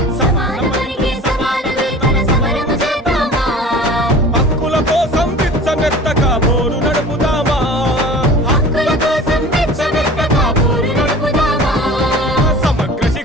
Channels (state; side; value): normal; both; correlation 0.41